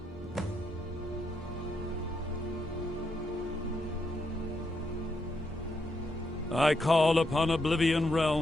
I call upon Oblivion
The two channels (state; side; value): normal; both; correlation 0.80